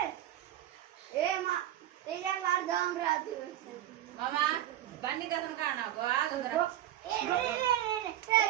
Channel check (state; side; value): quieter; left; 12.7 dB